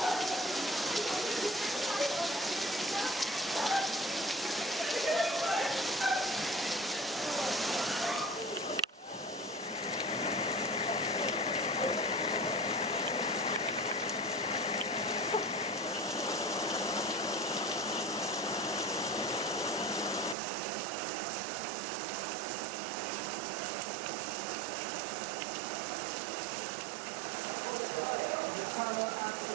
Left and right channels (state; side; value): drops out; left; at 20.4 s